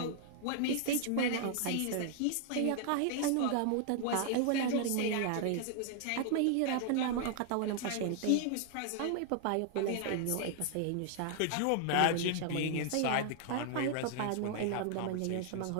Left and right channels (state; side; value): different; both; correlation 0.00